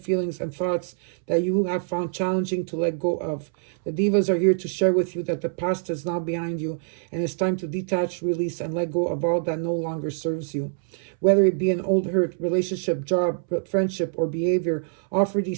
and thoughts that you have found challenging to let go of. The divas are here to share with you that the past is now behind you and it's time to detach, release, and let go of all that no longer serves you. Whether it be an old hurt, relationship, job, friendship, or behavior, offer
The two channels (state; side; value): silent; left; 62 dB below the other